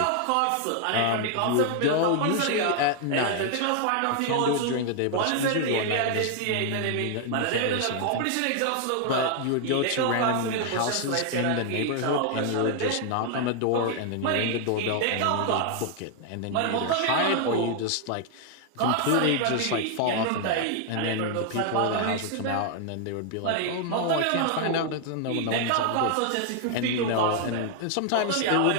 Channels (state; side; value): different; both; correlation 0.00